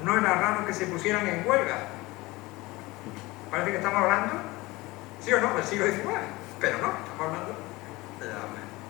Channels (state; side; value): quieter; right; 21.3 dB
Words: no era raro que se pusieran en huelga. Parece que estamos hablando, sí o no, del siglo XIX, pero no, estamos hablando de